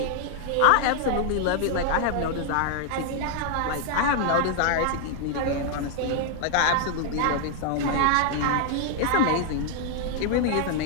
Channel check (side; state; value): both; different; correlation 0.00